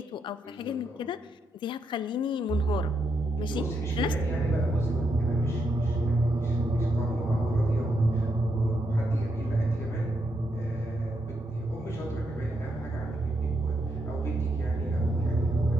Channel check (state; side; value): normal; both; correlation 0.80